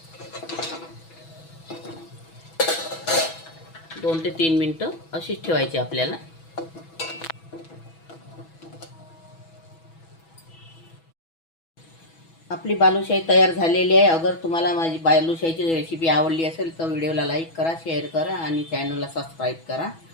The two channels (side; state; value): right; late; 6.1 ms